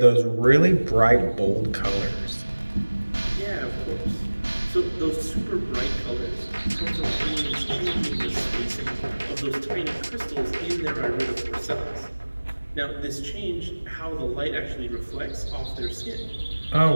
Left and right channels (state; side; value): inverted; both; correlation -1.00